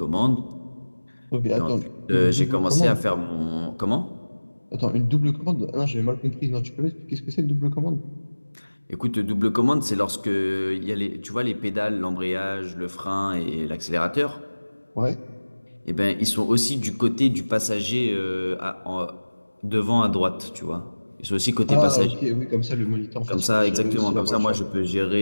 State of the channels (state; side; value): inverted; both; correlation -1.00